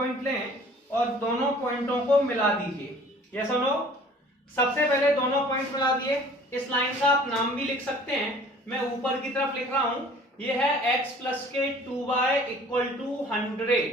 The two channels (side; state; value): both; normal; correlation 0.50